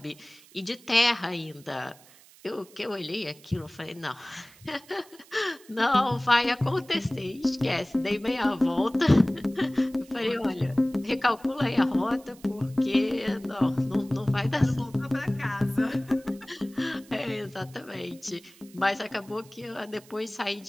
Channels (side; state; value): right; noise; hiss, 24 dB below the sound